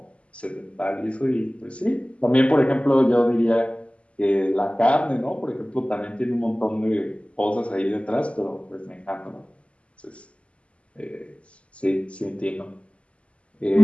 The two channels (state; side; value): late; right; 0.059 ms